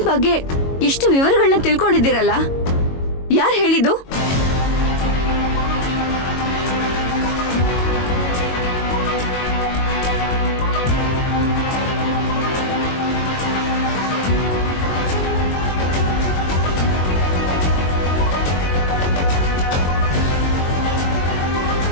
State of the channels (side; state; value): right; late; 22 ms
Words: ಬಗ್ಗೆ ಇಷ್ಟು ವಿವರಗಳನ್ನ ತಿಳ್ಕೊಂಡಿದ್ದೀರಲ್ಲ, ಯಾರು ಹೇಳಿದ್ದು?